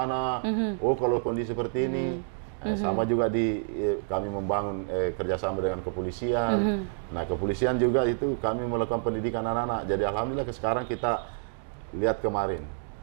oh kalau kondisi seperti ini. Sama juga kami membangun kerjasama dengan kepolisian. Nah, kepolisian juga itu kami melakukan pendidikan anak-anak. Jadi alhamdulillah sekarang kita lihat kemarin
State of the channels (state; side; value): silent; left; digital silence